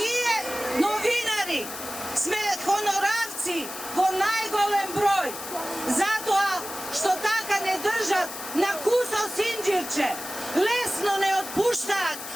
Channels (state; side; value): noise; left; hiss, 10 dB below the sound